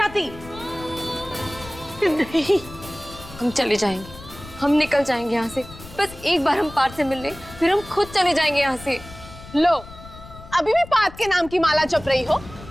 नहीं, हम चले जाएंगे, हम निकल जाएंगे यहाँ से। बस एक बार हम पार्थ से मिल लें, फिर हम खुद चले जाएंगे यहाँ से। लो, अभी भी पार्थ के नाम की माला जप रही हो?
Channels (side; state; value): left; noise; rumble, 17 dB below the sound